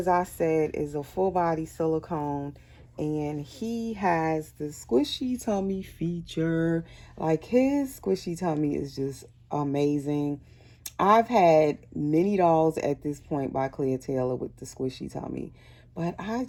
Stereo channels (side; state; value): both; identical; correlation 1.00